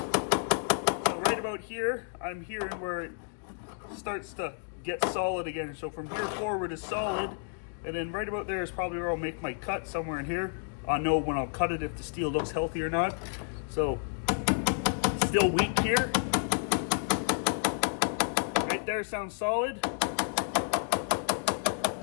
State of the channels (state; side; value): silent; right; 57 dB below the other